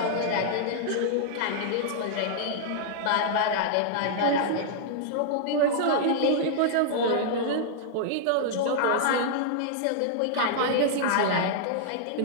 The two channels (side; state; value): both; different; correlation -0.01